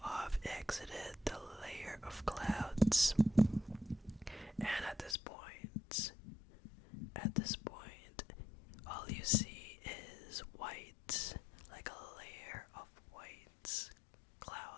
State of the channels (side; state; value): right; drops out; at 5.2 s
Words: have exited the layer of clouds. And at this point, all you see is white, like a layer of white